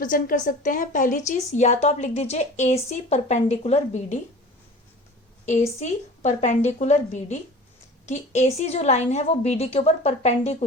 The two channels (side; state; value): both; normal; correlation 0.40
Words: कर सकते हैं. पहली चीज, या तो आप लिख दीजिए ए C perpendicular B D, A C perpendicular B D, कि ए सी जो लाइन है वो बी डी के ऊपर